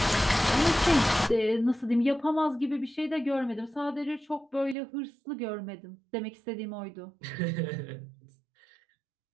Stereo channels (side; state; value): left; drops out; at 4.8 s